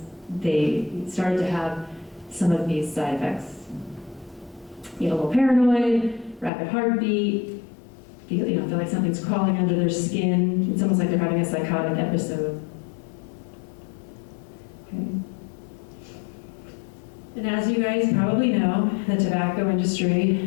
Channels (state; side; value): drops out; right; at 6.5 s